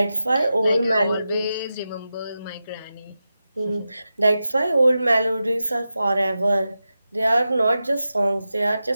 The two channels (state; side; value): inverted; both; correlation -0.91